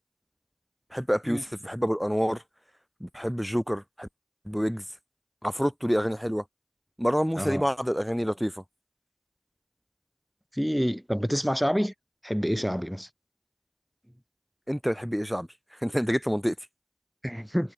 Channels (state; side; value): identical; both; correlation 1.00